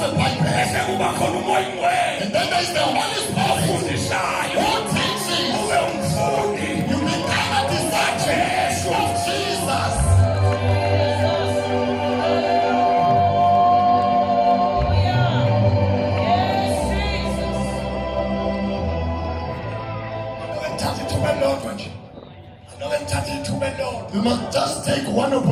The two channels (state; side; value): identical; both; correlation 1.00